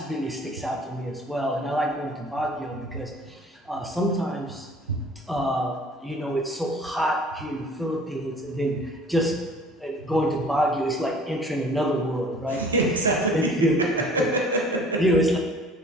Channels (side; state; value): both; normal; correlation 0.50